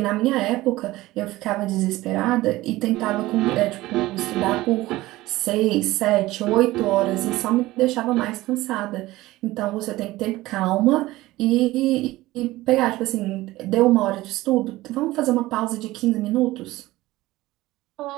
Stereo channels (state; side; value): quieter; left; 17.9 dB